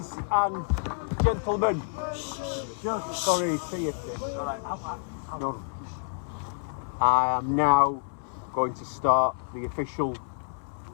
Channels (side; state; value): right; silent; 59 dB below the other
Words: and gentlemen. Sorry, see you. No. I am now going to start the official